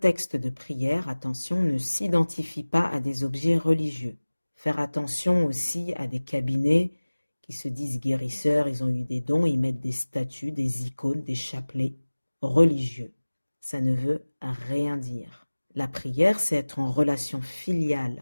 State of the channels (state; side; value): inverted; both; correlation -1.00